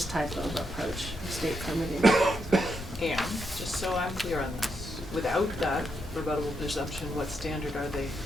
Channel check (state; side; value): normal; both; correlation 0.81